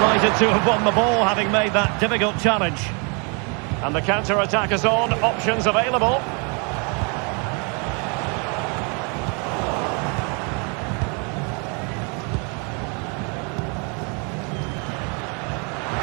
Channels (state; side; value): quieter; left; 34.6 dB